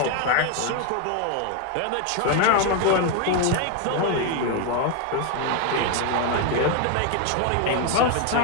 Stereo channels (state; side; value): different; both; correlation 0.01